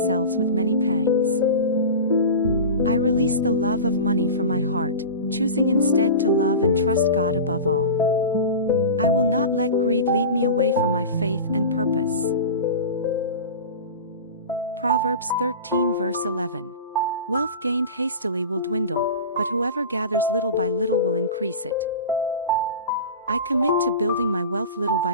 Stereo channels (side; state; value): both; inverted; correlation -0.30